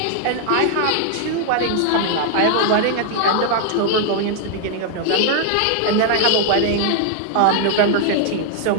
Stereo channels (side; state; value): both; different; correlation 0.00